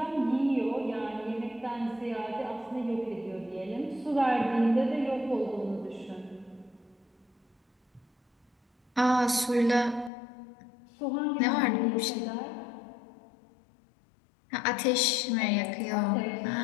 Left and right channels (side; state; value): right; drops out; at 10.1 s